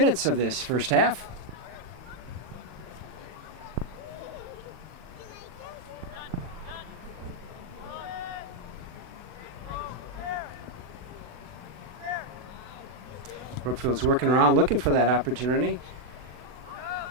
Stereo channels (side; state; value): left; late; 40 ms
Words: of this first half. Brookfield's working around looking for that opportunity.